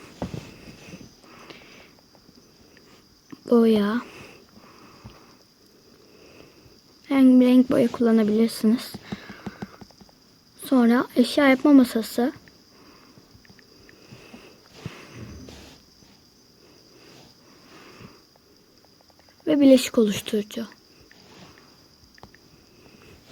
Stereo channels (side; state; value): both; identical; correlation 1.00